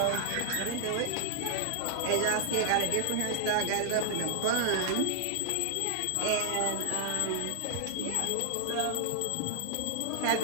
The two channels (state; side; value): different; both; correlation 0.00